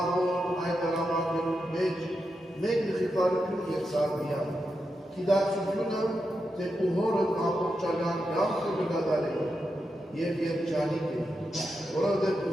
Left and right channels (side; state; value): both; normal; correlation 0.87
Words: այդ արամակերում մեջ մեկ նխիպարություն և սարդիան, կիդացությունը, թե ուհորդ ամպորջական գամքը կգադարելով և երջանիկ է, որովհետև